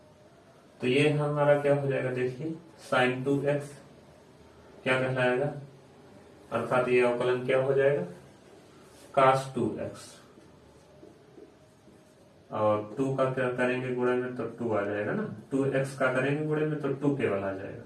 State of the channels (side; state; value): both; identical; correlation 1.00